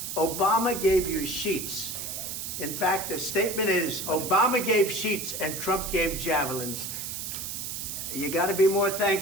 Obama gave you sheets. In fact, the statement is Obama gave sheets and Trump gave javelins. You got to be more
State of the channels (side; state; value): right; noise; hiss, 6 dB below the sound